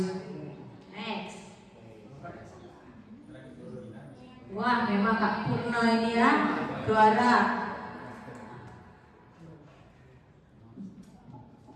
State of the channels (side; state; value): both; identical; correlation 1.00